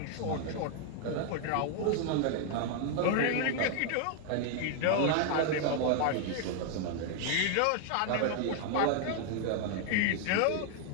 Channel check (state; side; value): different; both; correlation 0.00